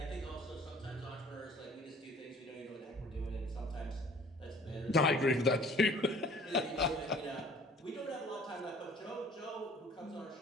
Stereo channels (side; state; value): both; normal; correlation 0.52